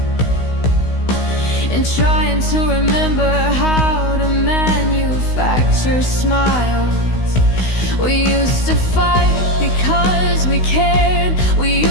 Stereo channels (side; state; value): right; late; 16 ms